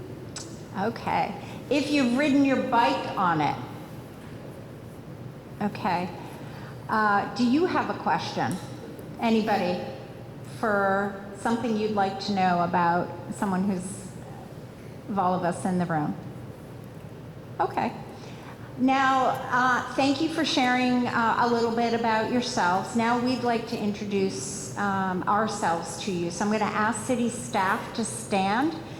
Okay. If you've ridden your bike on it. Okay. Do you have a question? Anybody? For something you'd like to know about someone who's of all of us in the room? Okay. Now, thank you for sharing a little bit about yourselves. Now we'd like to introduce ourselves to you. So I'm going to ask city staff to stand,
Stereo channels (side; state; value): both; identical; correlation 1.00